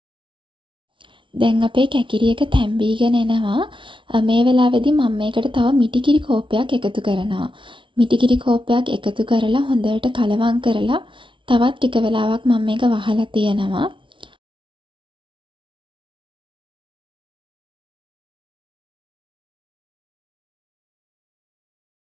දැන් අපේ කැකිරි එක තැම්බීගෙන එනවා. මේ වෙලාවේදී මම මේකට තව මිටිකිරි කෝප්පයක් එකතු කරනවා. මිටිකිරි කෝප්පයක් එකතු කරලා හොඳට කලවම් කරලා තවත් ටික වෙලාවක් මම මේක වහලා තියනවා.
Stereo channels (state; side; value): late; left; 0.24 ms